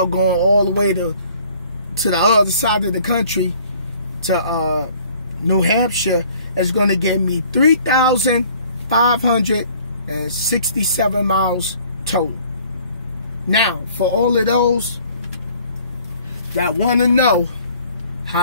going all the way to the other side of the country, to New Hampshire, is going to give me 3,500 and 67 miles total. Now, for all of those that want to know,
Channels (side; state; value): both; inverted; correlation -0.55